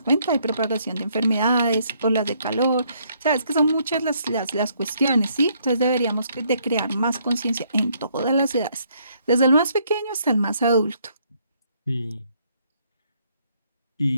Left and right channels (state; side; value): inverted; both; correlation -0.69